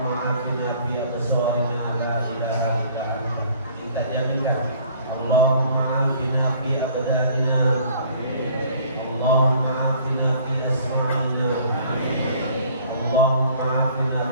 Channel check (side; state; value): both; inverted; correlation -0.55